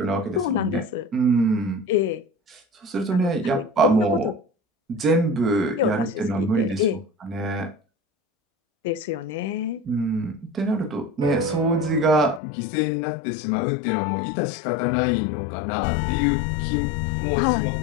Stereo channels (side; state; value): right; drops out; at 12.4 s